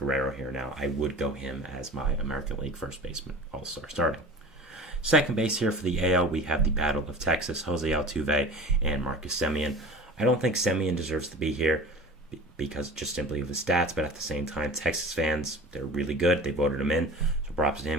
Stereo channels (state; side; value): normal; both; correlation 0.38